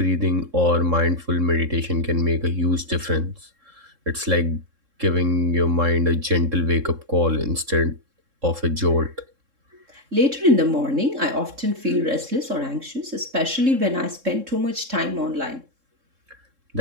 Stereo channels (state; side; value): late; left; 3.7 ms